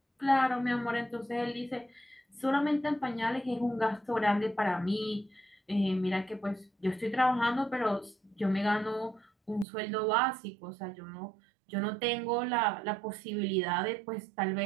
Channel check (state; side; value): drops out; left; at 9.7 s